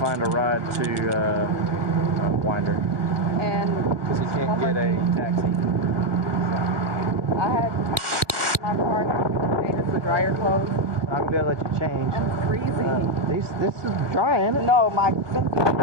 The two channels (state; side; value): late; left; 1.2 ms